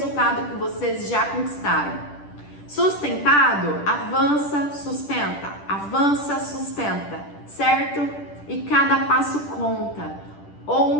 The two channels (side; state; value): right; late; 10 ms